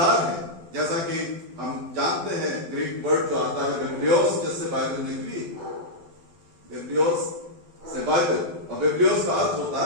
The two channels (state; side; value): late; left; 12 ms